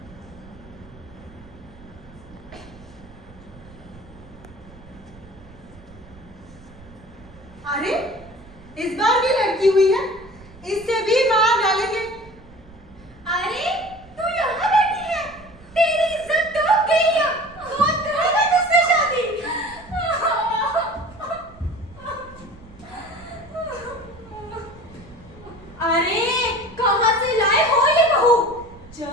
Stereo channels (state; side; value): noise; right; rumble, 22 dB below the sound